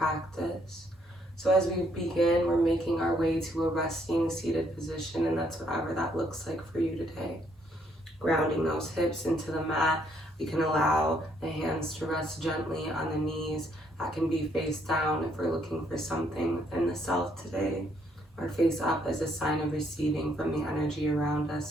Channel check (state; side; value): normal; both; correlation 0.70